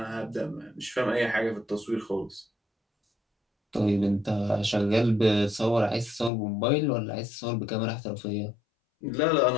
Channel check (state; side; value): drops out; right; at 6.3 s